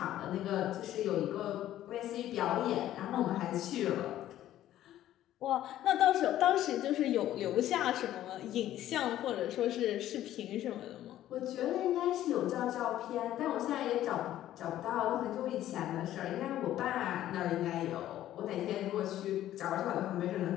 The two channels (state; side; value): quieter; right; 12.9 dB